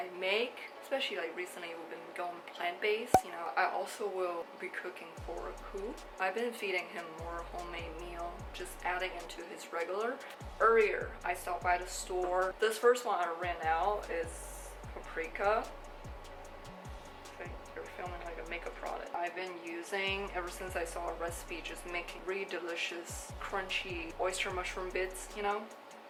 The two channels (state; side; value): identical; both; correlation 1.00